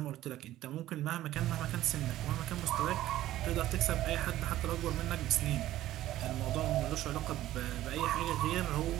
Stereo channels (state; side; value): quieter; left; 14.3 dB